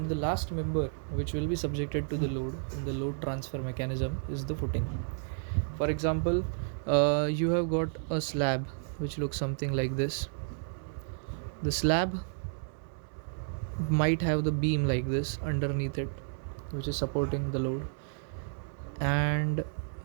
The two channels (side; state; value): left; silent; 57 dB below the other